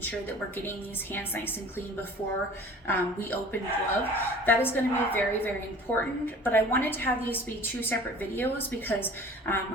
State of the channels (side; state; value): both; normal; correlation 0.45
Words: sure that we're getting these hands nice and clean before we open glove. That is going to be very, very important, but I wanted to have these be two separate videos because